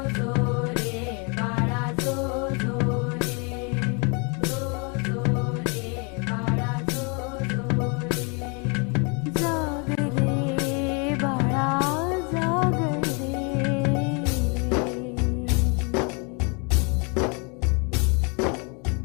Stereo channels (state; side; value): quieter; right; 34.1 dB